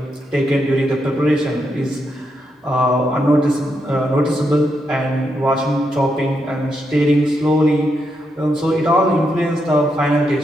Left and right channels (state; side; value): normal; both; correlation 0.82